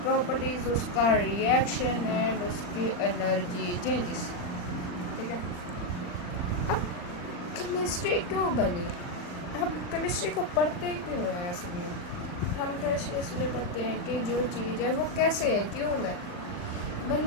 प्रॉपर्टीज, उसका रिएक्शन एंड उसकी एनर्जी चेंजेस, ठीक है। अब केमिस्ट्री क्यों बनी? हम केमिस्ट्री को पढ़ते क्यों हैं? ऐसे में हम केमिस्ट्री इसलिए पढ़ते हैं कि जो चीज़ है वो कैसे है, क्यों है,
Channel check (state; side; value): late; right; 40 ms